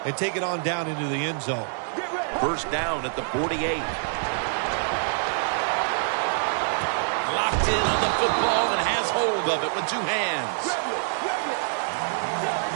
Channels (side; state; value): left; silent; digital silence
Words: and take it on down into the end zone. First down at the 48. Locked in on the football and has hold of it with 2 hands.